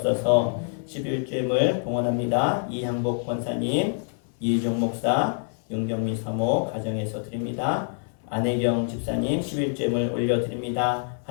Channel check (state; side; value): silent; right; 58 dB below the other